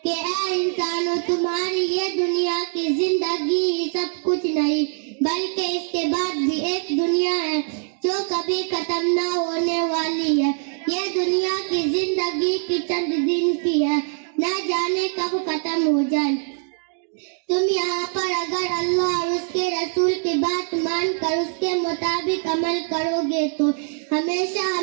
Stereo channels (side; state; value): left; silent; 57 dB below the other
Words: کہ اے انسانوں، تمہاری یہ دنیا کی زندگی ہی سب کچھ نہیں، بلکہ اس کے بعد بھی ایک دنیا ہے جو کبھی ختم نہ ہونے والی ہے. یہ دنیا کی زندگی کی چند دن کی ہے، نہ جانے کب ختم ہو جائے. تم یہاں پر اگر اللہ اور اس کے رسول کی بات مان کر اس کے مطابق عمل کرو گے تو ہمیشہ